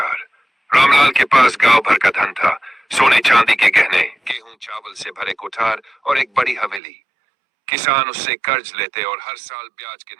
रामलाल के पास गांव भर का धन था, सोने चांदी के गहने, गेहूं चावल से भरे कोठार और एक बड़ी हवेली। किसान उससे कर्ज लेते और हर साल ब्याज के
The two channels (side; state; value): left; drops out; at 6.8 s